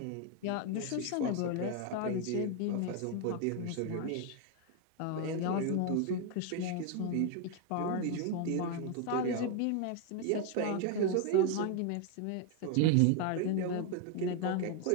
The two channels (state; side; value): different; both; correlation 0.01